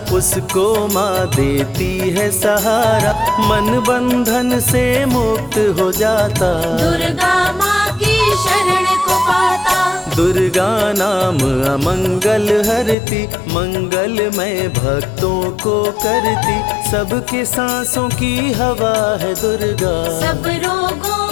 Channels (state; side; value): drops out; right; at 13.0 s